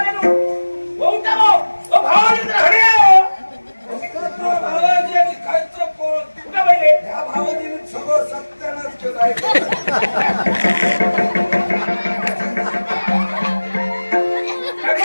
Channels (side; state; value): both; inverted; correlation -1.00